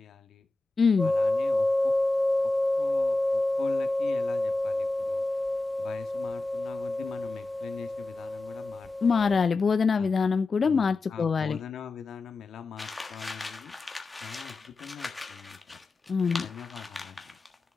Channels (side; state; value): right; quieter; 3.2 dB